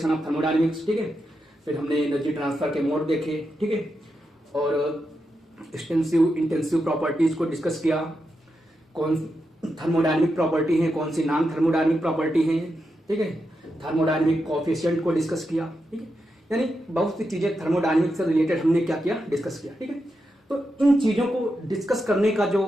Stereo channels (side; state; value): both; normal; correlation 0.86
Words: of thermodynamics. ठीक है, फिर हमने एनर्जी ट्रांसफर के मोड देखे। ठीक है, और एक्सटेंसिव इंटेंसिव प्रॉपर्टीज को डिस्कस किया। कौन थर्मोडायनेमिक प्रॉपर्टी है, कौन सी नॉन थर्मोडायनेमिक प्रॉपर्टी है। ठीक है, थर्मोडायनेमिक कोएफिशिएंट को डिस्कस किया। ठीक है, यानी बहुत सी चीजें थर्मोडायनेमिक्स से रिलेटेड हमने क्या किया, डिस्कस किया। ठीक है, तो इन चीजों को डिस्कस करने का